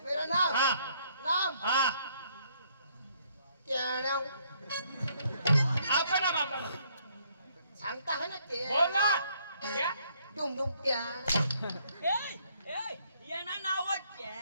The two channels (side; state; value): both; inverted; correlation -0.68